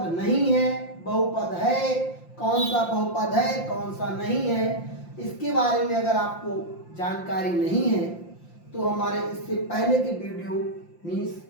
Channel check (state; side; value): late; right; 5.7 ms